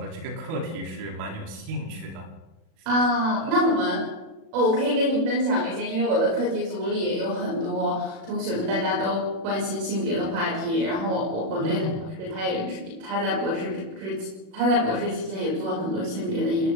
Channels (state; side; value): late; left; 36 ms